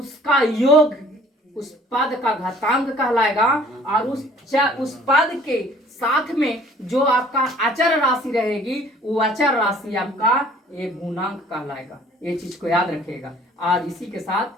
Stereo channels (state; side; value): normal; both; correlation 0.53